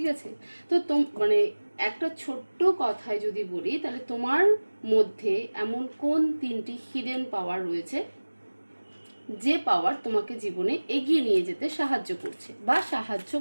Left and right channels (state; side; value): inverted; both; correlation -1.00